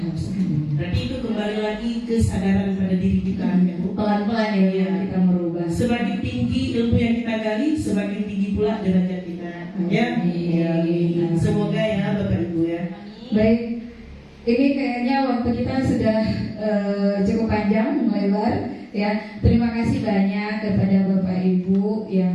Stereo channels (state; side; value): identical; both; correlation 1.00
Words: haus akan ilmu. Berarti itu kembali lagi kesadaran pada diri kita. Pelan-pelan ya, kita merubah. Semakin tinggi ilmu yang kita gali, semakin tinggi pula derajat kita. Ya, semoga ya Bapak Ibu ya. Baik, ini kayaknya waktu kita sudah cukup panjang, lebar. Ya, terima kasih banyak kepada Bapak Ibu yang